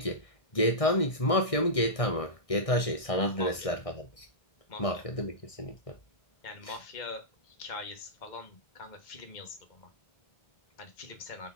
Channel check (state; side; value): late; right; 1.6 ms